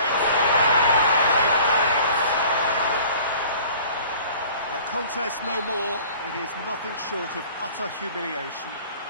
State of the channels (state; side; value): inverted; both; correlation -0.48